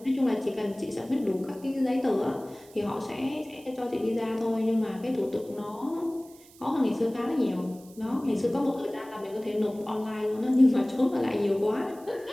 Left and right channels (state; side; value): noise; right; hiss, 24 dB below the sound